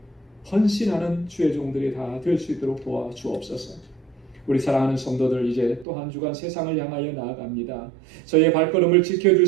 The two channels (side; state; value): left; drops out; at 5.9 s